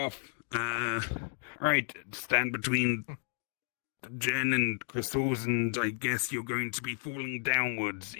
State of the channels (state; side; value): silent; right; 56 dB below the other